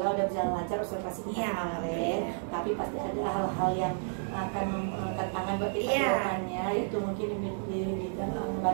udah berjalan lancar observasi kita kemarin, tapi pasti ada hal-hal yang akan tantangan buat kita kedepannya, yaitu mungkin di dalam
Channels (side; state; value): left; silent; digital silence